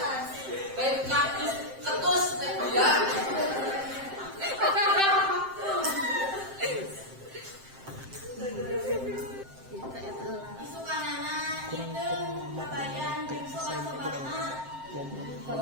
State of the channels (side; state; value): left; late; 7.6 ms